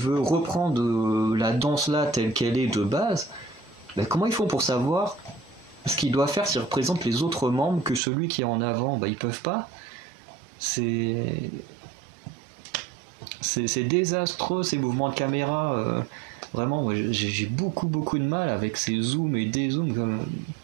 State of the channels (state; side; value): drops out; left; at 8.0 s